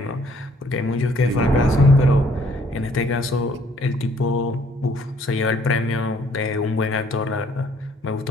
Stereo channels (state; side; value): normal; both; correlation 0.63